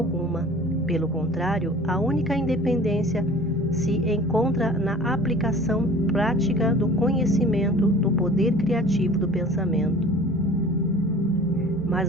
Pelo contrário, a única independência se encontra na aplicação prática do conhecimento do poder criativo do pensamento.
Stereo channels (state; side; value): normal; both; correlation 0.45